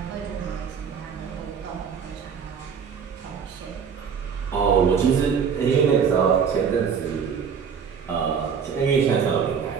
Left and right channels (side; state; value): left; quieter; 6.7 dB